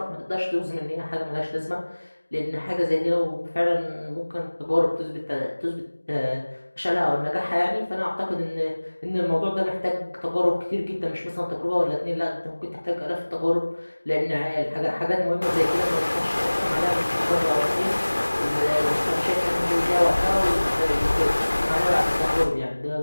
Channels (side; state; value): both; inverted; correlation -1.00